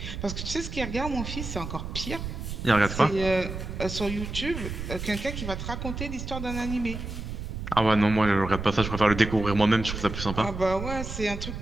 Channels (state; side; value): noise; right; rumble, 7 dB below the sound